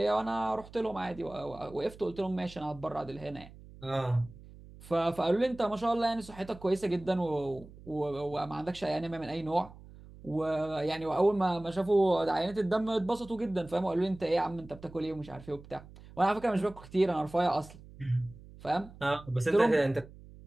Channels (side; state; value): right; noise; hum, 19 dB below the sound